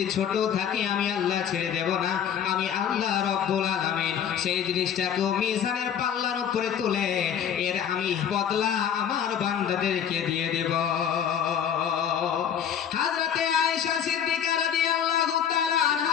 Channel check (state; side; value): quieter; right; 8.7 dB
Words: ছোট থাকে আমি আল্লাহ ছেড়ে দেব না। আমি আল্লাহ রাব্বুল আলামিন সেই জিনিসটাকে মিজানের পাল্লার উপরে তুলে এর আমি বদলা আমার বান্দাদেরকে দিয়ে দেব। হযরতে আয়েশা সিদ্দিকা রাদিয়াল্লাহু তাআলা